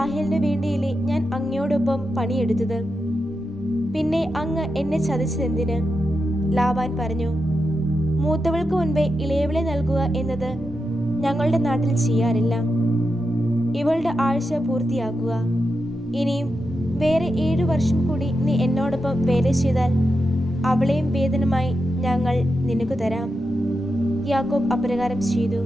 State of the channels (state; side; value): normal; both; correlation 0.88